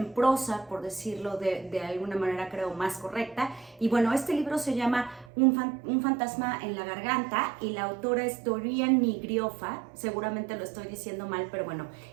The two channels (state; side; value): drops out; left; at 5.3 s